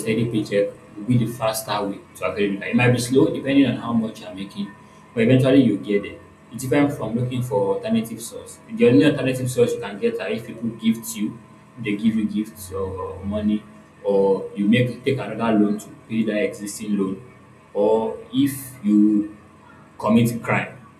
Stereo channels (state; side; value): identical; both; correlation 1.00